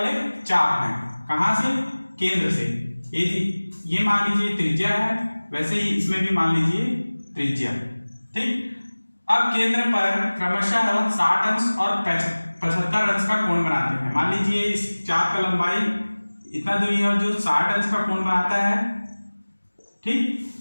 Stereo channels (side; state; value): both; inverted; correlation -1.00